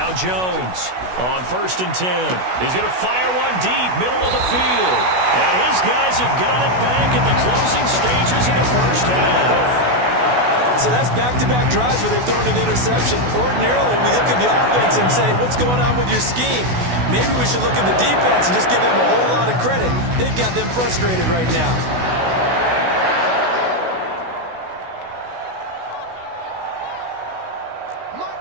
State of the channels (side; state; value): left; late; 16 ms